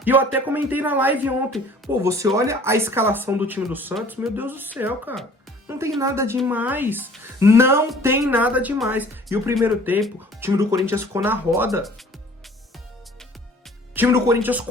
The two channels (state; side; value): normal; both; correlation 0.51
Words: E eu até comentei na live ontem. Pô, você olha a escalação do time do Santos, meu Deus do céu, cara. Não tem nada demais. Não tem nada demais. E o primeiro tempo, o time do Corinthians ficou na roda. O time do Corinthians